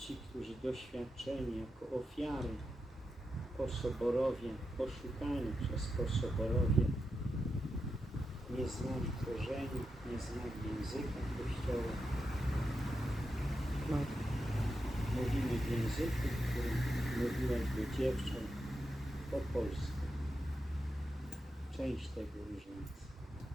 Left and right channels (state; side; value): normal; both; correlation 0.88